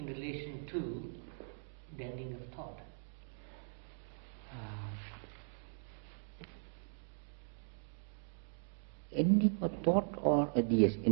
relation to the ending of thought? Ending of thought or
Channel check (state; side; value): silent; left; digital silence